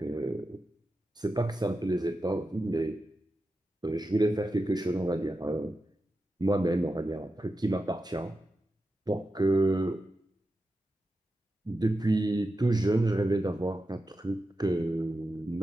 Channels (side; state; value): both; normal; correlation 0.90